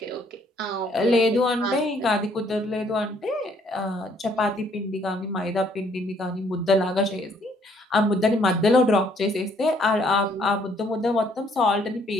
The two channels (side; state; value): both; normal; correlation 0.65